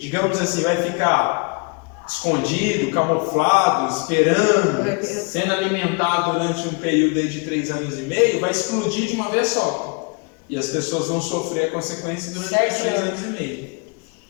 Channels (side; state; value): right; quieter; 33.3 dB